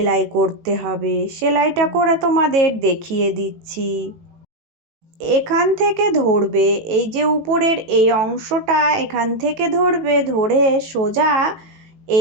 করতে হবে। সেলাইটা করে তোমাদের দেখিয়ে দিচ্ছি। এখান থেকে ধরবে, এই যে উপরের এই অংশটা এখান থেকে ধরবে, ধরে সোজা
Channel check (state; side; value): late; left; 18 ms